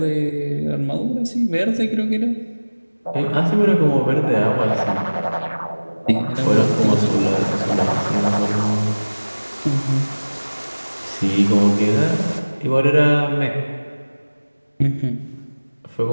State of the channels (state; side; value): inverted; both; correlation -1.00